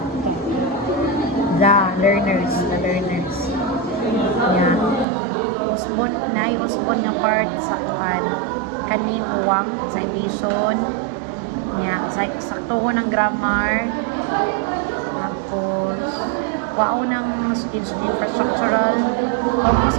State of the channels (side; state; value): left; drops out; at 5.1 s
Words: the learners. Yan. Usbon, usbon nga part sa kuhan. Kani, uwang, citation. Yan, saktuho ng grammar. Tapos, wow ng infrastructural. Focus